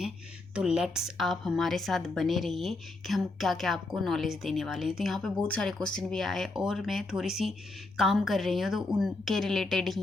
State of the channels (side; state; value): right; quieter; 3.0 dB